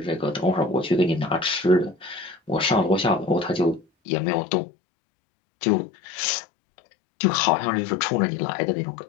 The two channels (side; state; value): right; drops out; at 3.9 s